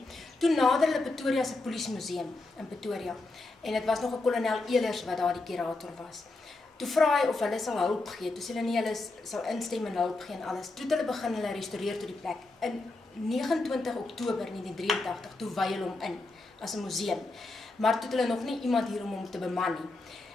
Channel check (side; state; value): right; quieter; 3.2 dB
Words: Toe nader hulle Pretoria se polisiemuseum in Pretoria, en dit was nog 'n kolonel Elers wat daar die kurator was. Toe vra hy of hulle sal hulp gee. Toe sê hulle nee, hulle sal instem en hulp gee en alles. Toe hulle begin hulle restaureer tot die plek. In 29 Oktober 1983 toe wy hulle hom in as 'n museum. Maar toe het hulle nog nie iemand hier om hom te beman nie.